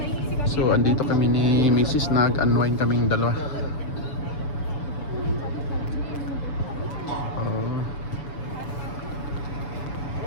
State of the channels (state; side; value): late; right; 7.0 ms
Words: So andito kami ni Mrs. Nag-unwind kaming dalawa.